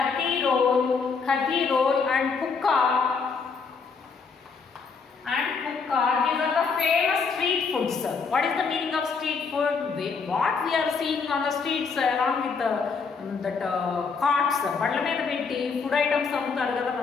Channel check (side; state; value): right; quieter; 5.2 dB